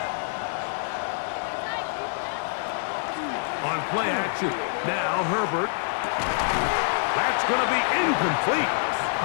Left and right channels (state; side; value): silent; right; digital silence